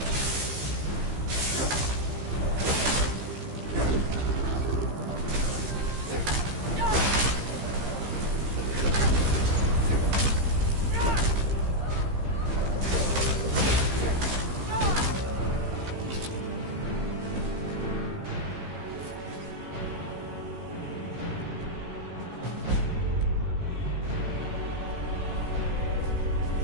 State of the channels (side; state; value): left; late; 15 ms